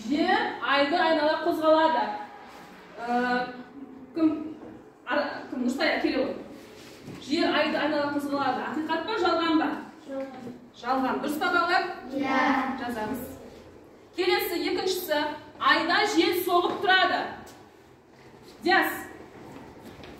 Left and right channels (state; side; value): identical; both; correlation 1.00